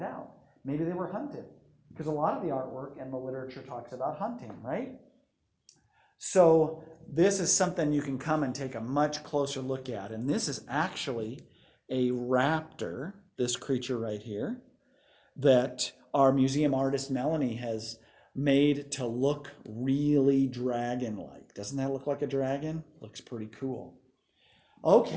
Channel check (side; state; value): both; identical; correlation 1.00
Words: out. Maybe they were hunted, because a lot of the artwork and the literature talks about hunting, right? So this is something you can come and take a much closer look at. And this is actually a raptor, this creature right here, that our museum artist Melanie has made to look really dragon-like. Doesn't that look like a dragon? Looks pretty cool.